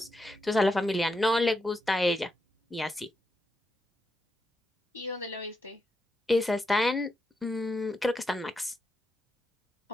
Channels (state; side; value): normal; both; correlation 0.85